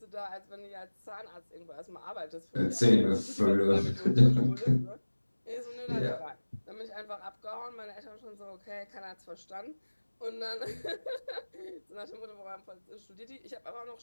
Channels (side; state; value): both; inverted; correlation -1.00